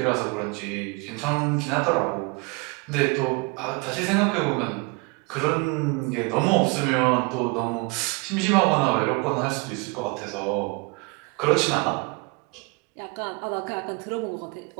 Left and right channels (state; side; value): quieter; left; 29.0 dB